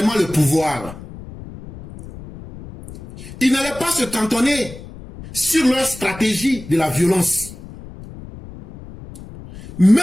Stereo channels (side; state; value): left; noise; rumble, 15 dB below the sound